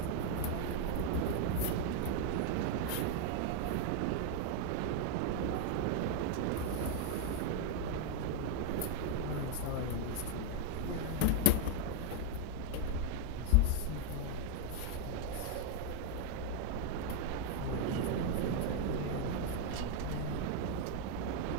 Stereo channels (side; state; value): both; different; correlation 0.00